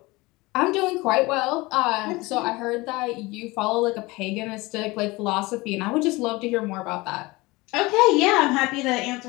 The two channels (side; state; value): right; quieter; 22.4 dB